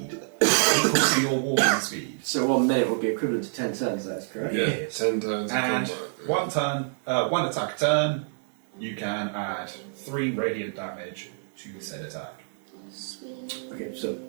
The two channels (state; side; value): silent; left; digital silence